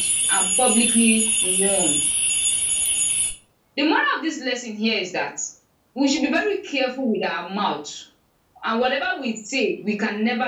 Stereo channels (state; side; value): identical; both; correlation 1.00